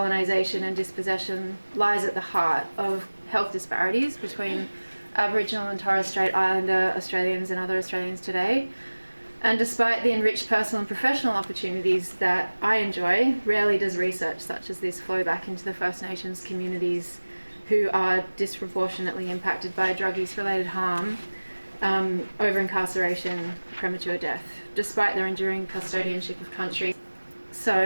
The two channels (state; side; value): inverted; both; correlation -1.00